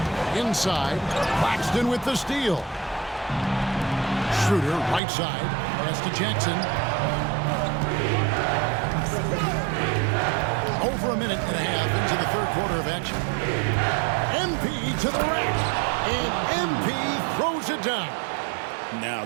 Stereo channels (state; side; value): drops out; left; at 5.0 s